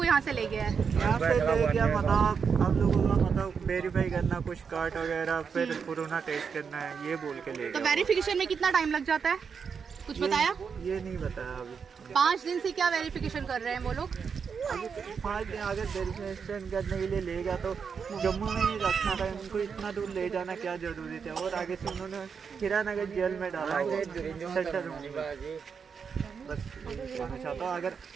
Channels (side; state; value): left; quieter; 6.2 dB